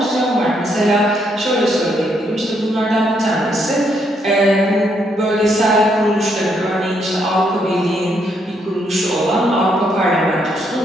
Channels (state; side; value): normal; both; correlation 0.74